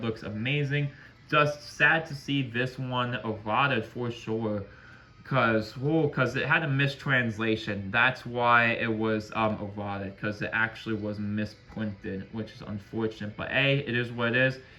looks amazing. Just sad to see this one eroded for sure. Because it had a mistranslation. That's why it was eroded. Because it actually was misprinted, which is unfortunate. But hey, it is what it is.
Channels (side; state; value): both; identical; correlation 1.00